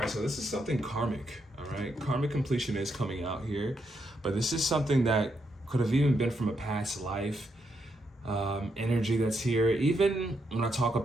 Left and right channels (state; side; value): normal; both; correlation 0.80